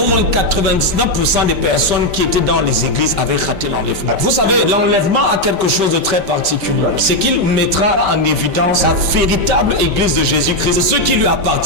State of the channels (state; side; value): late; left; 5.2 ms